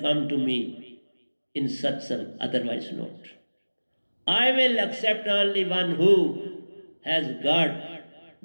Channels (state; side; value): inverted; both; correlation -1.00